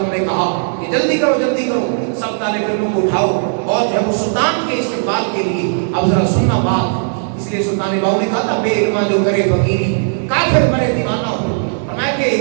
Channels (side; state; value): left; silent; digital silence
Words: نے کہا کہ جلدی کرو سب طالب علموں کو اٹھاؤ، اور جو ہے وہ سلطان کے استقبال کے لیے اب ذرا سننا بات. اس لیے سلطان باؤ نے کہا تھا بے علما جو کرے فقیری کافر مرے دیوانہ ہو. فرمایا